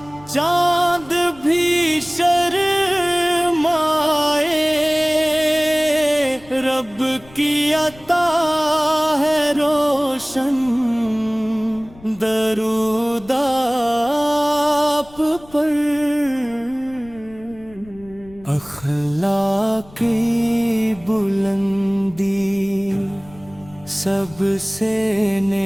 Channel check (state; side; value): noise; left; rumble, 23 dB below the sound